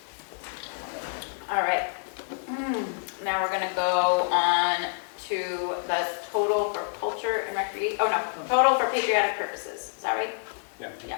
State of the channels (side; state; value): right; silent; digital silence